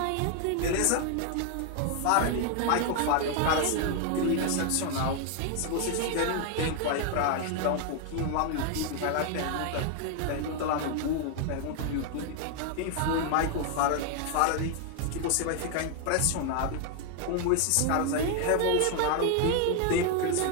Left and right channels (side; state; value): both; different; correlation 0.00